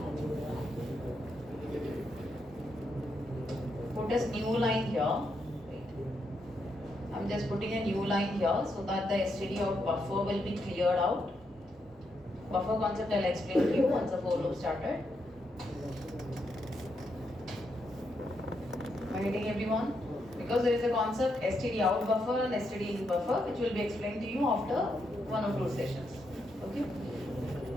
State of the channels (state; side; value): normal; both; correlation 0.80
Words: Put a new line here. Wait. I'm just putting a new line here so that the std out buffer will be cleared out. Buffer concept I'll explain to you once the for loop started. Am I getting everyone? Because there is a concept std out buffer and std in buffer which will be explained to you after 1 or 2 sessions. Okay.